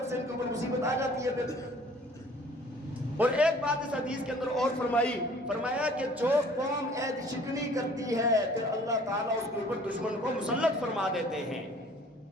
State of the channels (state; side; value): normal; both; correlation 0.52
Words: سے ان کے اوپر مصیبت آ جاتی ہے پھر. اور ایک بات اس حدیث کے اندر اور فرمایا کہ جو قوم عہد شکنی کرتی ہے پھر اللہ تعالیٰ اس کے اوپر دشمن کو مسلط فرما دیتے ہیں.